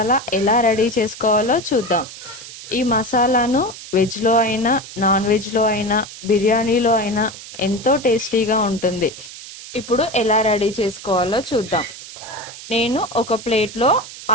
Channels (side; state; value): right; noise; hiss, 14 dB below the sound